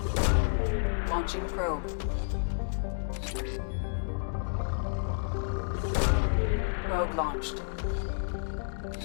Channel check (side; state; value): right; silent; digital silence